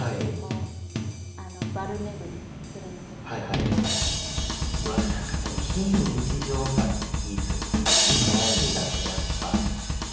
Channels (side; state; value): both; identical; correlation 1.00